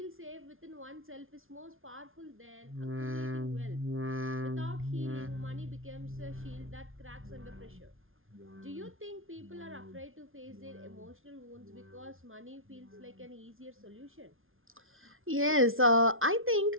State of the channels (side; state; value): left; late; 0.60 ms